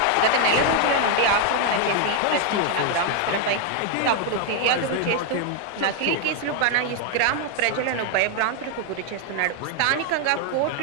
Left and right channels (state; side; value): different; both; correlation 0.00